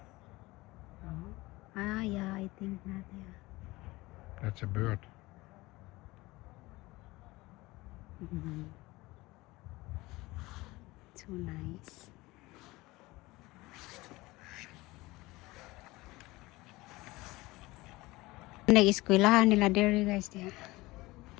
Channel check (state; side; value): quieter; right; 20.6 dB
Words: Ah, yeah, I think not, yeah. That's a bird. So nice. Nag-eskwelahan nila dere guys diya.